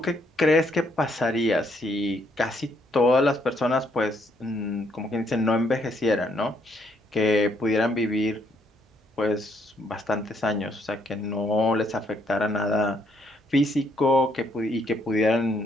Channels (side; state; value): both; normal; correlation 0.71